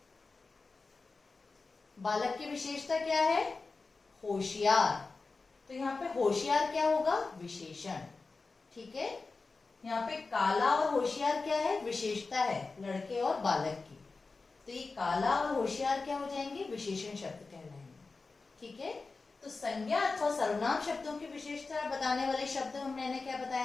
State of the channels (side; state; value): right; quieter; 4.0 dB